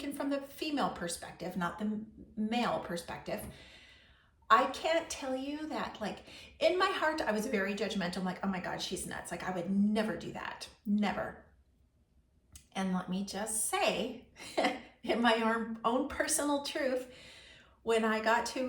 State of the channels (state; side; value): identical; both; correlation 1.00